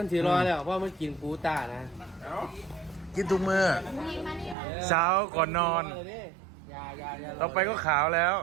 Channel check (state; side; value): drops out; left; at 4.5 s